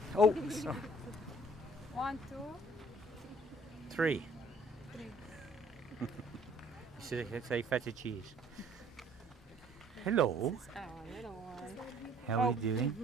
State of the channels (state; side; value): normal; both; correlation 0.58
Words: Oh, sorry. 1, 2, 3. 3. Say feta cheese. Hello. This is our little one. How are you